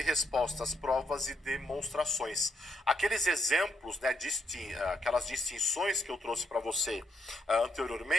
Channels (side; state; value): both; normal; correlation 0.78